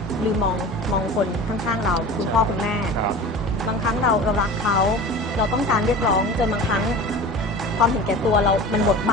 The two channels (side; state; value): both; normal; correlation 0.36